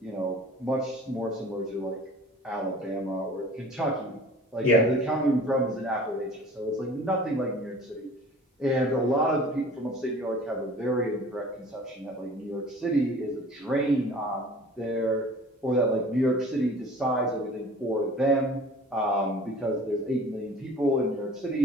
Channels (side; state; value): both; normal; correlation 0.45